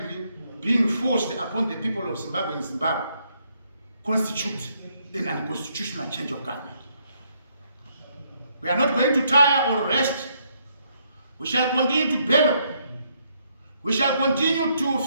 being forced upon the people of Zimbabwe and Zimbabwe constitute an unconstitutional change of government. We are not going to tire or rest. We shall continue to bellow. We shall continue to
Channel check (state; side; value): inverted; both; correlation -0.73